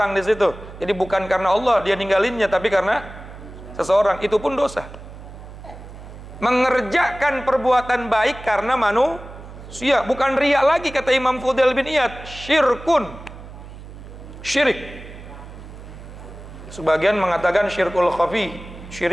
di situ. Jadi bukan karena Allah dia ninggalinnya, tapi karena seseorang. Itu pun dosa. Mengerjakan perbuatan baik karena manusia bukan riya lagi, kata Imam Fudail bin Iyad. Syirkun, syirik. Sebagian mengatakan syirkul khafi,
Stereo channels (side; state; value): right; noise; hum, 15 dB below the sound